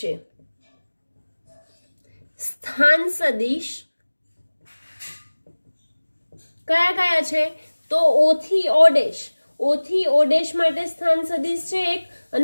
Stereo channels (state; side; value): inverted; both; correlation -1.00